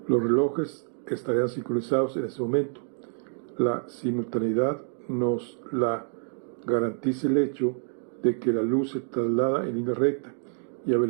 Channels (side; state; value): left; silent; 55 dB below the other